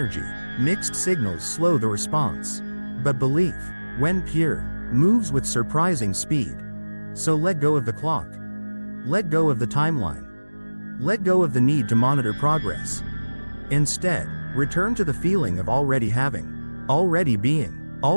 mixed signals slow the response. But belief, when pure, moves with surprising speed. So let go of the clock. Let go of the timeline. Let go of the need to monitor progress. Instead, return to the feeling of already having, already being,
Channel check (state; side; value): inverted; both; correlation -1.00